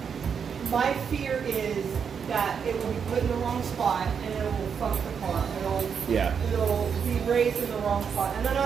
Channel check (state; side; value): quieter; left; 6.8 dB